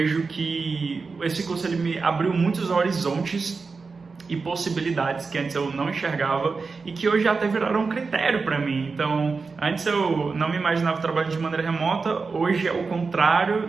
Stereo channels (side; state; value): left; quieter; 4.5 dB